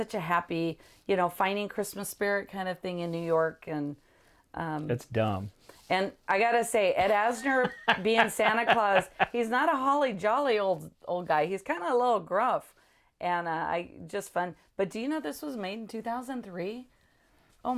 a happy, finding Christmas spirit kind of thing in New York, and it's dumb. And I gotta say, Ed Asner being Santa Claus, he's not a holly jolly old guy. He's kind of a little gruff, and just fun. But do you know this was made in 2003? Oh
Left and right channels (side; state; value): both; identical; correlation 1.00